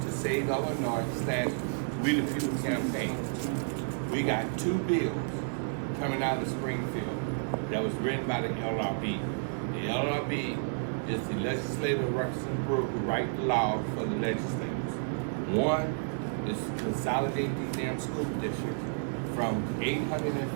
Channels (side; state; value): left; silent; 57 dB below the other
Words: Save Illinois / We the People campaign. We got 2 bills coming out of Springfield that was written by the LRB. The LRB is the legislative representative group who write the law for the legislators. One is to consolidate these damn school districts from